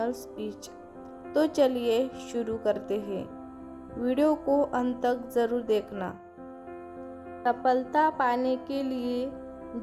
स्पीच। तो चलिए शुरू करते हैं। वीडियो को अंत तक ज़रूर देखना। सफलता पाने के लिए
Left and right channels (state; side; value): identical; both; correlation 1.00